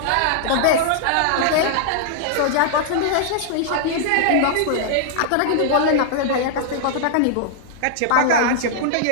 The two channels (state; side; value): different; both; correlation -0.01